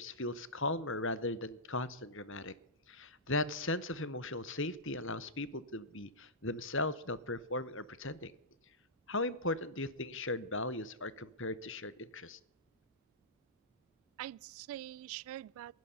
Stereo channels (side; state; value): both; normal; correlation -0.14